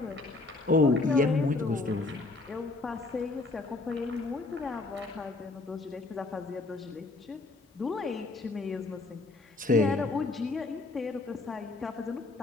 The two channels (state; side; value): quieter; right; 3.3 dB